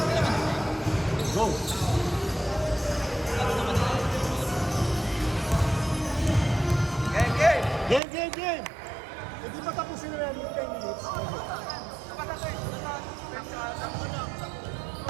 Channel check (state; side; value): drops out; left; at 8.0 s